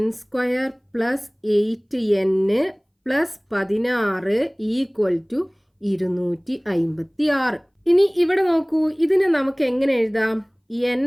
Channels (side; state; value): both; identical; correlation 1.00